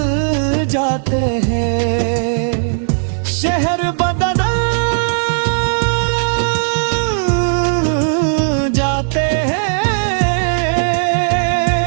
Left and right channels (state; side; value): silent; left; digital silence